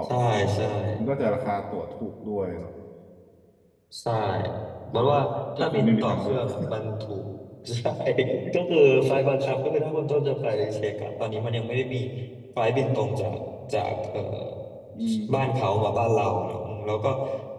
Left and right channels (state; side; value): identical; both; correlation 1.00